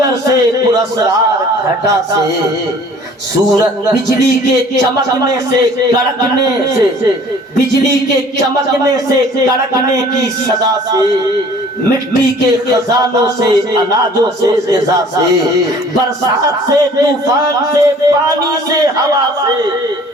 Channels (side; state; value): both; normal; correlation 0.51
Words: سے، پراسرار گھٹا سے، سورج بجلی کے چمکنے سے کڑکنے سے، بجلی کے چمکنے سے کڑکنے کی صدا سے، مٹی کے خزانوں سے، اناجوں سے، غذا سے، برسات سے، طوفان سے، پانی سے، ہوا سے،